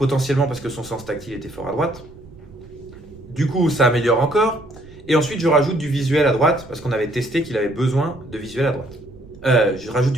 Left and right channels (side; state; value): right; noise; rumble, 21 dB below the sound